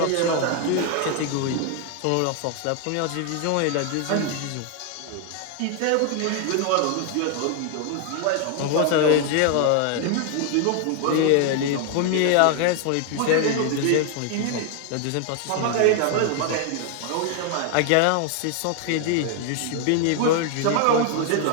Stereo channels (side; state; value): both; different; correlation 0.00